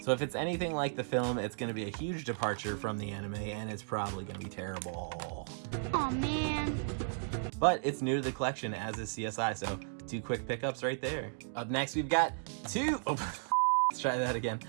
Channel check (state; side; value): silent; left; digital silence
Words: So if it's anything like the film, it's going to be a huge departure from the anime, and it's probably going to be terrible. Aw, man. But it's new to the collection, as is CSI, so 2 quick pickups right there. Up next, we've got 2... Oh, let's try that again.